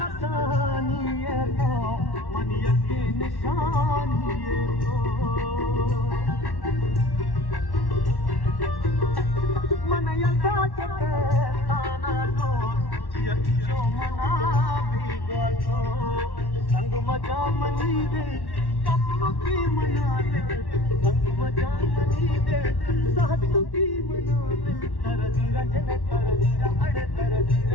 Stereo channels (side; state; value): right; late; 1.1 ms